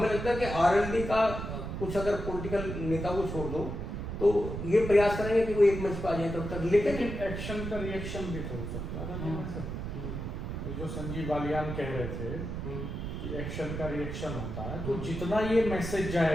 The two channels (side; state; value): right; noise; rumble, 5 dB below the sound